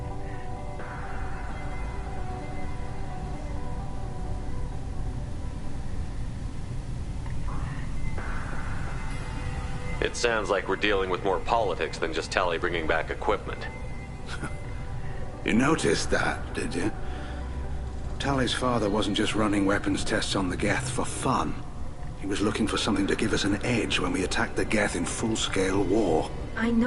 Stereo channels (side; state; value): both; identical; correlation 1.00